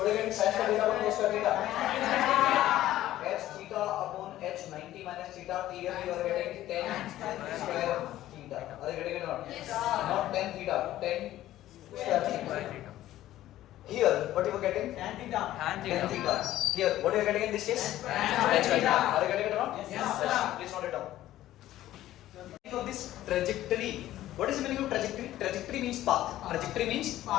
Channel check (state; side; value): quieter; right; 14.1 dB